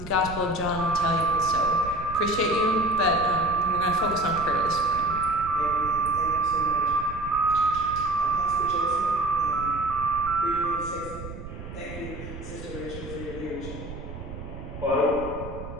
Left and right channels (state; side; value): noise; right; rumble, 11 dB below the sound